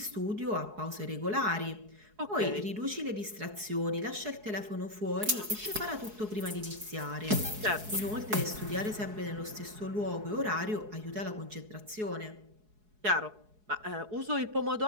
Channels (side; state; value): left; late; 4.7 ms